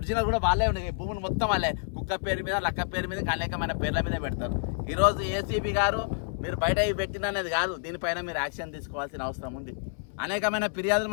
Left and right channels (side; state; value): right; silent; 59 dB below the other